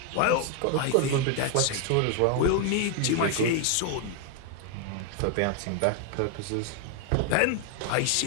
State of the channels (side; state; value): both; different; correlation 0.01